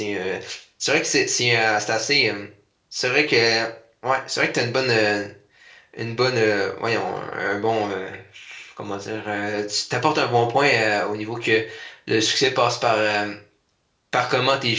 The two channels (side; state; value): both; identical; correlation 1.00